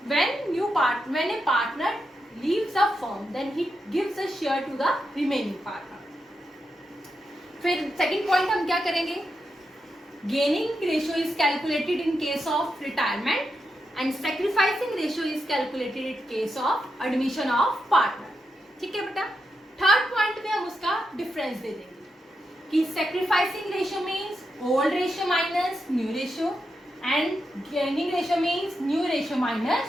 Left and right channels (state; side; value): normal; both; correlation 0.86